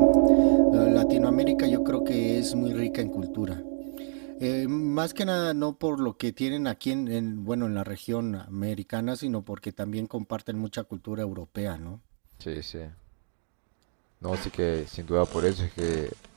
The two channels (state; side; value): silent; left; digital silence